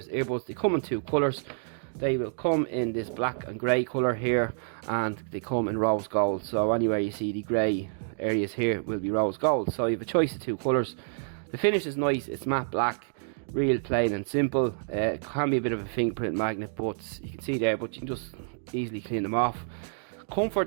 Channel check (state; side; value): silent; left; digital silence